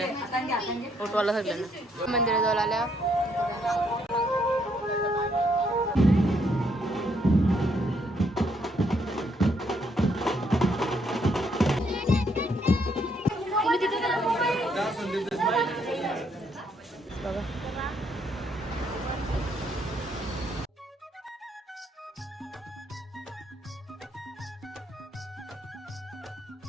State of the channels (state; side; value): normal; both; correlation 0.72